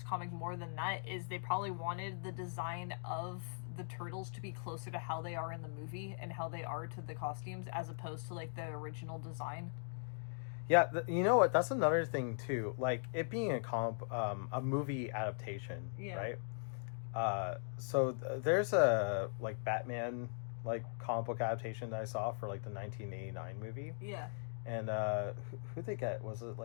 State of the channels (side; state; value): right; silent; digital silence